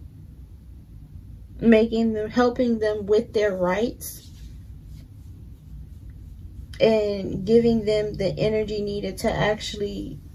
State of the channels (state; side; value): identical; both; correlation 1.00